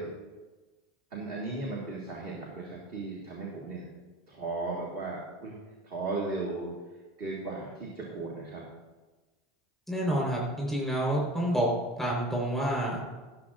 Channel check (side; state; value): both; normal; correlation 0.42